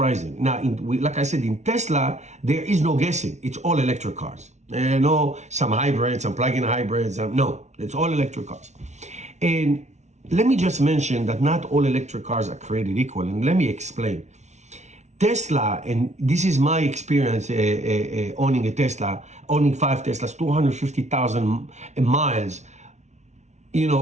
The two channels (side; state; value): left; late; 0.33 ms